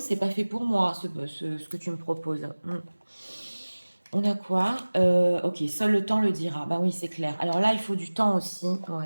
pas fait pour moi ce que tu me proposes. On a quoi? Ok, seul le temps le dira. Bah oui, c'est clair. Alors là, il faut du temps aussi.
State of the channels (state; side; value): inverted; both; correlation -1.00